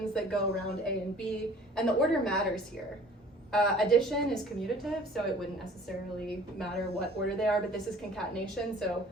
that go around A and B, and the order matters here. Addition is commutative, so it wouldn't necessarily matter what order they are, but this is concatenation, so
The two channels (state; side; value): normal; both; correlation 0.50